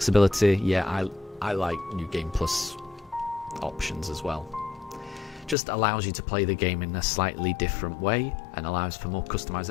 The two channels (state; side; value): drops out; right; at 5.6 s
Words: Yeah, I like New Game Plus options as well. Just allows you to play the game in a slightly different way and allows for more